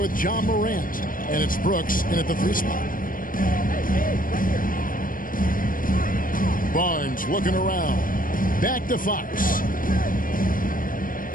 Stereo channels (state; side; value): late; right; 0.40 ms